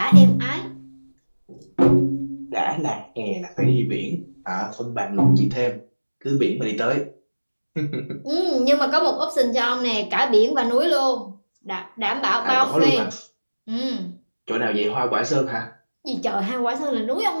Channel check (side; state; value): both; inverted; correlation -1.00